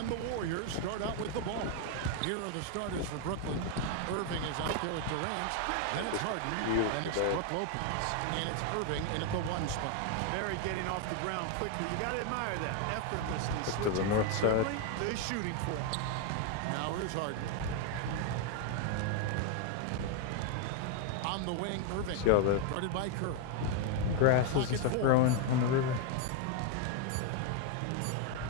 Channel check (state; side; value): different; both; correlation 0.01